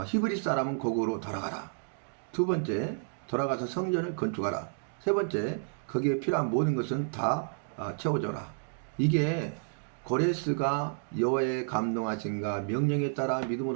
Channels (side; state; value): left; silent; digital silence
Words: 히브리 사람은 고국으로 돌아가라. 두 번째, 돌아가서 성전을 건축하라. 세 번째, 거기에 필요한 모든 것은 다 채워줘라. 이게 고레스가 여호와의 감동하신가 명령에 따라